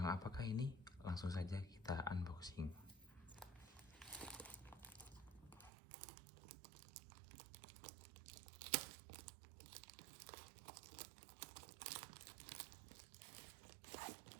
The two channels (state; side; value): drops out; left; at 5.7 s